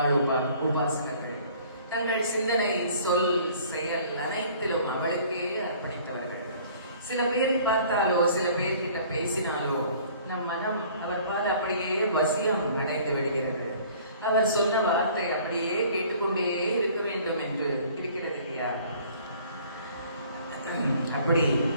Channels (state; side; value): inverted; both; correlation -0.53